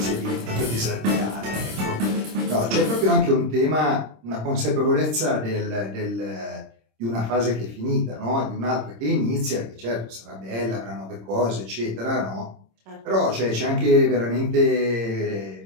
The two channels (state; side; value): late; left; 26 ms